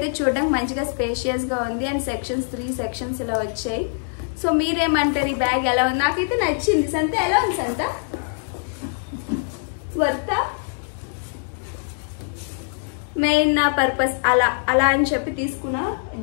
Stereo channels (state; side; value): silent; right; 63 dB below the other